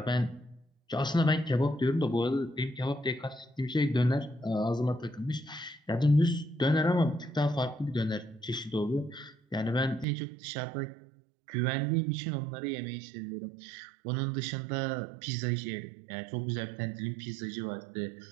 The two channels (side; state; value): left; drops out; at 10.1 s